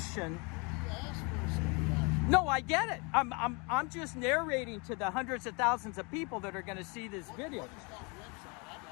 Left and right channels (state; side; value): quieter; right; 30.6 dB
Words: No, I get it. I'm just narrating to the hundreds of thousands of people that are going to see this video.